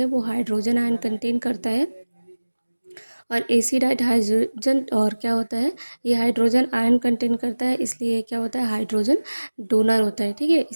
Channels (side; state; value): both; inverted; correlation -1.00